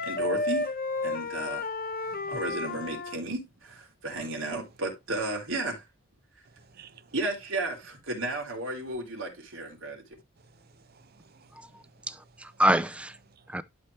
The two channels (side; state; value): both; normal; correlation 0.31